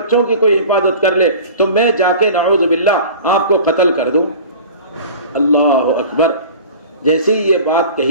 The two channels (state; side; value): inverted; both; correlation -0.39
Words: کی کوئی حفاظت کر لے تو میں جا کے نعوذ باللہ آپ کو قتل کر دوں؟ اللہ اکبر۔ جیسے ہی یہ بات